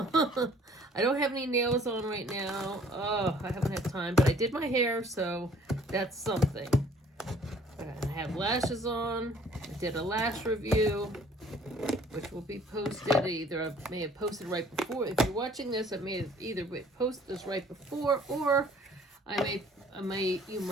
I don't have any nails on right now. Oh, I haven't had time, but I did my hair, so that's something. I have lashes on. I did a lash review, which will be posted. Either I may have posted right before. If you're watching this, I may have either posted this right before, or you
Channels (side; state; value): both; normal; correlation 0.56